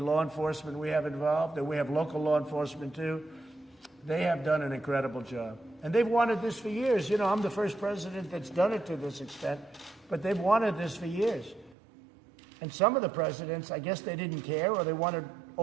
enforcement we have involved, and we have local law enforcement too, they have done an incredible job. And they've wanted this for years. You know, I'm the first president that's done it to this extent, but they've wanted this for years. And some of the presidents, I guess they didn't care, or they wanted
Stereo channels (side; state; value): left; drops out; at 11.8 s